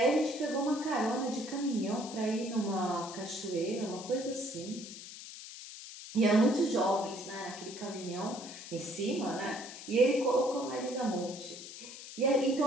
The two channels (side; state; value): left; noise; hiss, 12 dB below the sound